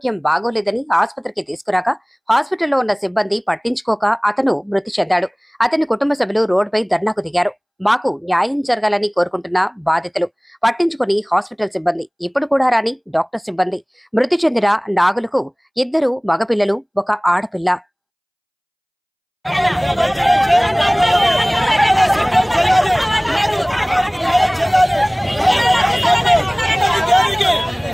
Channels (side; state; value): both; identical; correlation 1.00